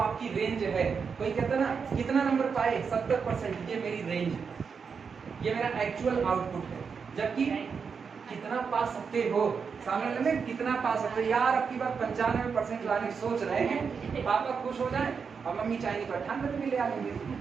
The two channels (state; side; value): quieter; left; 5.9 dB